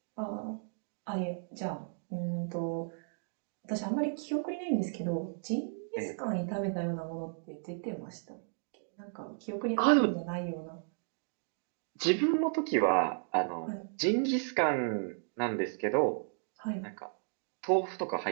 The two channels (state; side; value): silent; left; digital silence